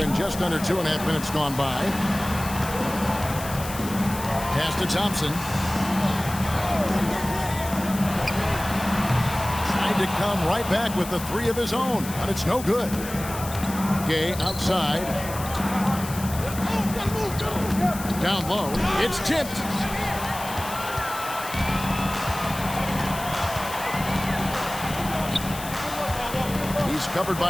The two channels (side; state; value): left; noise; hiss, 11 dB below the sound